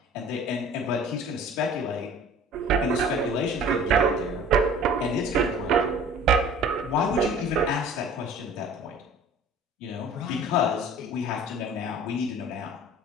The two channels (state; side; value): normal; both; correlation 0.46